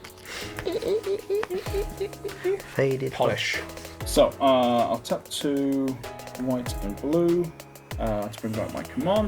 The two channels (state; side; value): identical; both; correlation 1.00